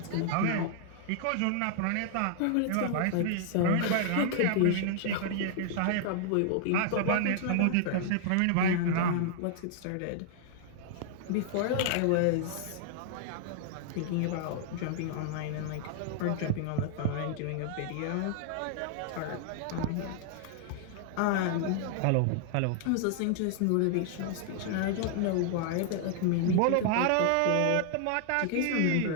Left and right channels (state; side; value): different; both; correlation 0.00